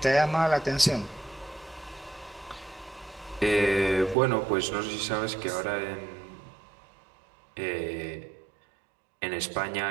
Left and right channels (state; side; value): drops out; left; at 4.2 s